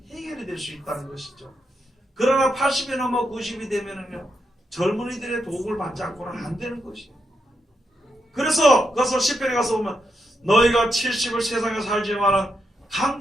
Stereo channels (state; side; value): normal; both; correlation 0.83